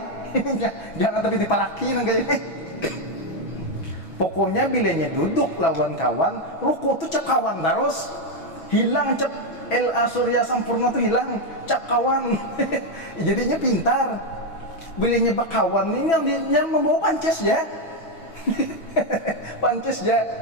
Jangan tapi diparaki nang kayak ini. Pokoknya bilanya duduk lawan kawan, ruku tuh cep kawan terus. Hilang cep Surya Sampurna tuh hilang, cep kawan. Jadinya pintar. Bilanya bak kawan ini yang membawa pances ya. Pances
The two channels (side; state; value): right; late; 6.1 ms